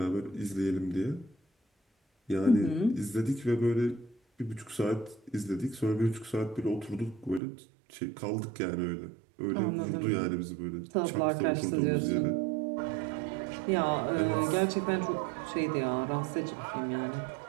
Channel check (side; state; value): left; drops out; at 7.4 s